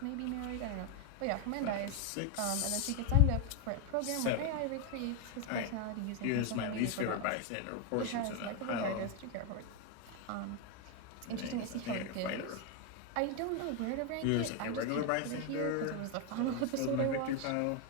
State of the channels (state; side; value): different; both; correlation 0.01